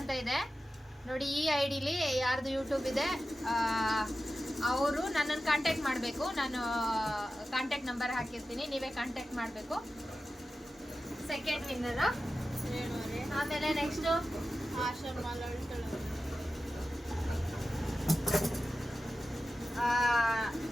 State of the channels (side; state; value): both; normal; correlation 0.93